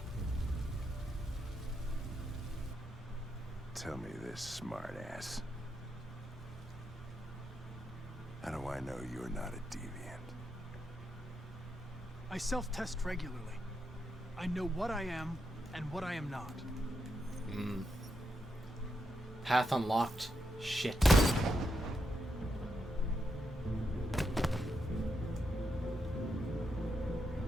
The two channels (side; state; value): both; normal; correlation 0.83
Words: Tell me this, smartass. How do I know you're not a deviant? I self-test regularly. I know what I am and what I am not. Path unlocked. Shit.